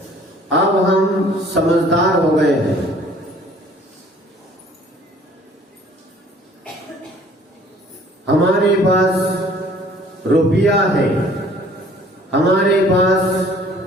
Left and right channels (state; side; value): normal; both; correlation 0.54